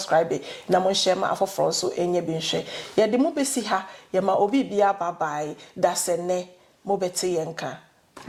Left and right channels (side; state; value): both; identical; correlation 1.00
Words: na mon share ma for front so any bin share. Ya the mo be see ha, ya ma obi be a bye bye, that's a ne, mo beti yenka.